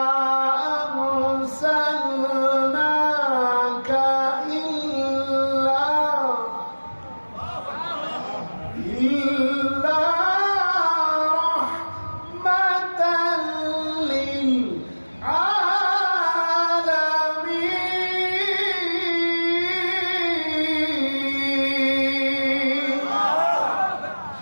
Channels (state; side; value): inverted; both; correlation -1.00